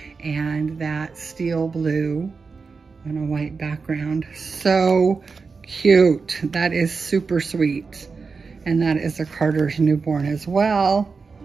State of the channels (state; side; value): quieter; left; 4.8 dB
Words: and that steel blue on a white background. So cute. That is super sweet. And that is a Carter's newborn as well.